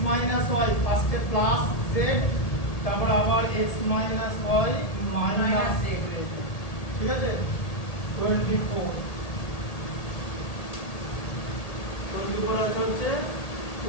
মাইনাস y ফার্স্টে প্লাস z তারপর আবার x minus y minus z ঠিক আছে 24 24 আছে হচ্ছে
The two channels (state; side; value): late; right; 1.8 ms